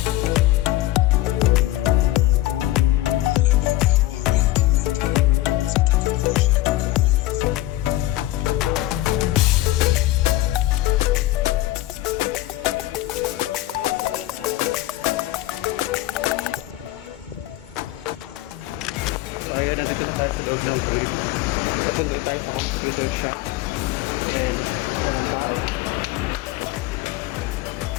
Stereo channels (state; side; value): quieter; right; 16.5 dB